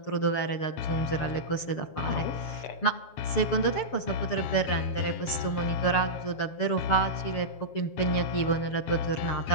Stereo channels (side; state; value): right; late; 7.3 ms